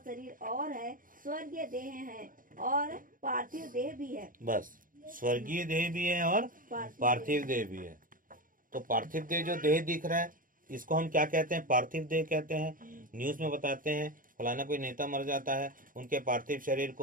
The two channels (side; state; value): left; late; 0.40 ms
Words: और है, स्वर्गीय देह है और पार्थिव देह भी है। बस, स्वर्गीय देह भी है और पार्थिव देह भी है। तो पार्थिव देह जो देह दिख रहा है इसको हम क्या कहते हैं, पार्थिव देह कहते हैं। न्यूज में बताते हैं फलाना कोई नेता मर जाता है, उनके पार्थिव शरीर